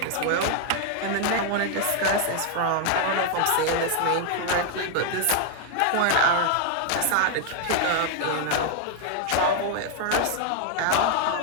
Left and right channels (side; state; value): both; different; correlation 0.00